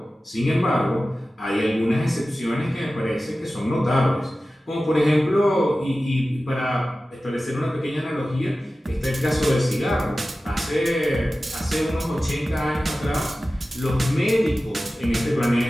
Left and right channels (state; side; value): normal; both; correlation 0.95